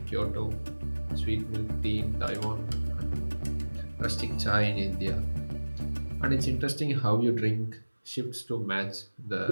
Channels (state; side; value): inverted; both; correlation -1.00